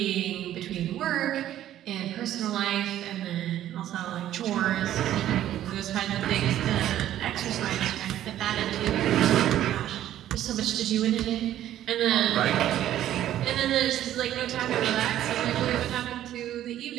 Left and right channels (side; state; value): left; quieter; 12.3 dB